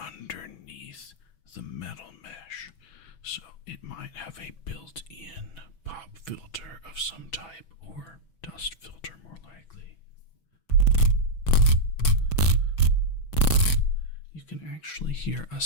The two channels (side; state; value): right; late; 6.1 ms